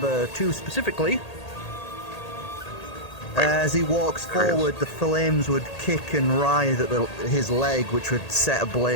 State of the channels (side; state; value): right; late; 1.8 ms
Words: 2 specifically. As he walks forward, the flames would kick and writhe at his leg, which would set